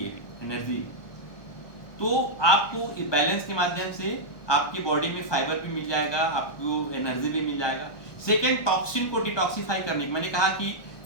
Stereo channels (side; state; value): right; late; 1.2 ms